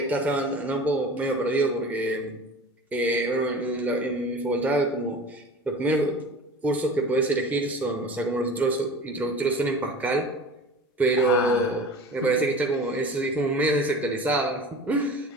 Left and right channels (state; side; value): normal; both; correlation 0.38